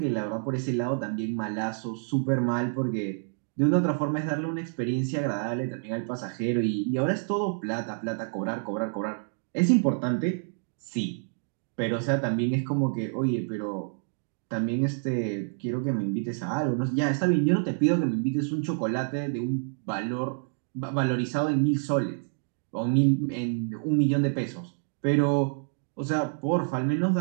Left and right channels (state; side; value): silent; left; 59 dB below the other